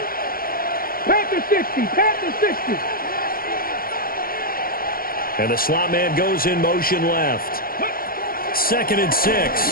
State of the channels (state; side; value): late; right; 0.42 ms